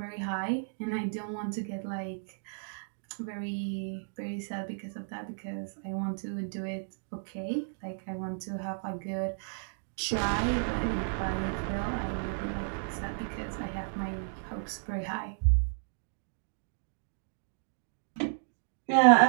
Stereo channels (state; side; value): silent; left; digital silence